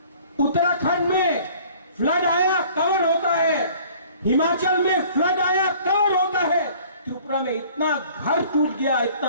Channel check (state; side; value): inverted; both; correlation -0.52